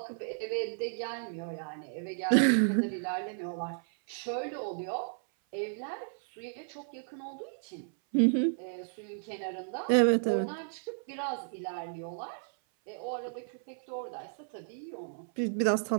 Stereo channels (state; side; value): silent; left; 56 dB below the other